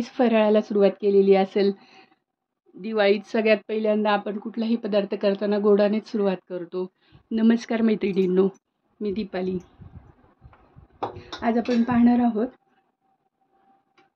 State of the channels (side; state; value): both; identical; correlation 1.00